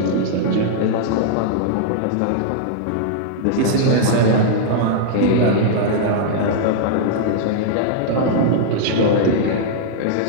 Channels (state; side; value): different; both; correlation -0.01